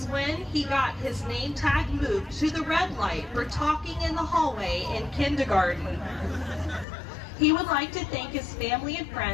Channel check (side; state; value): right; drops out; at 6.9 s